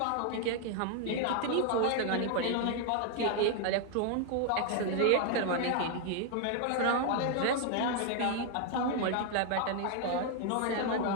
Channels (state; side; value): different; both; correlation 0.00